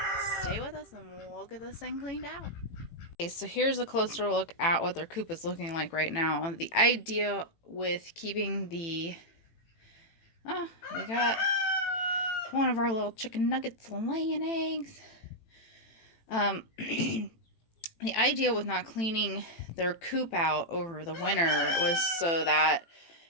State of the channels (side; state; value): right; late; 18 ms